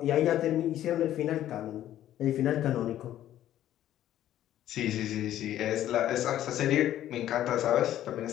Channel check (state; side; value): quieter; right; 12.4 dB